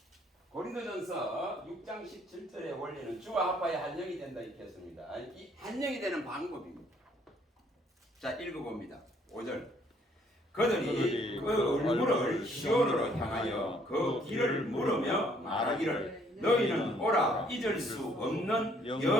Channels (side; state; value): both; normal; correlation 0.64